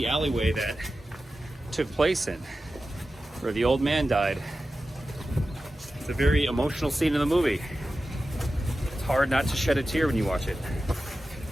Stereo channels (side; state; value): both; normal; correlation 0.93